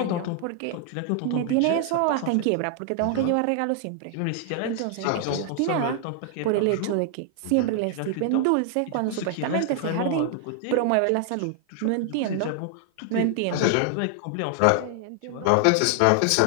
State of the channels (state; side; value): different; both; correlation 0.00